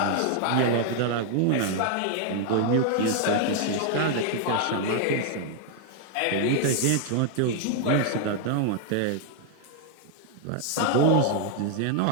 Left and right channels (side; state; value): both; different; correlation 0.00